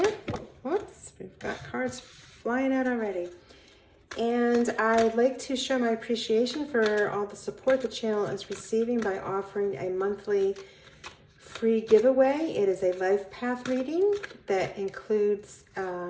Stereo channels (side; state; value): both; identical; correlation 1.00